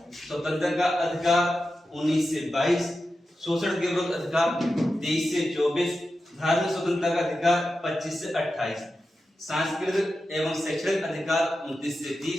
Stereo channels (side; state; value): both; normal; correlation 0.91